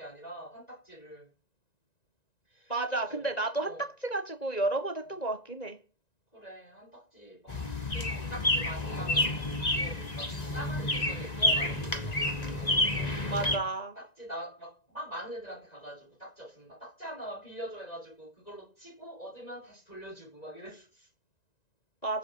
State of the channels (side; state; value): right; late; 1.9 ms